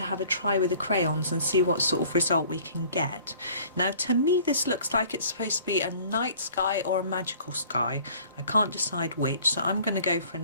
have a try with the crayons and see what sort of result we can get. Now to me this looks like it's supposed to be a night sky or a magical sky. I can't decide which, so I'm going to go for a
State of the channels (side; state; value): both; inverted; correlation -0.51